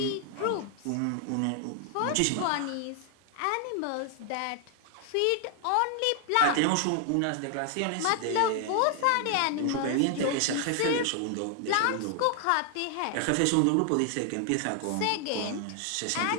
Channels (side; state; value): both; different; correlation 0.00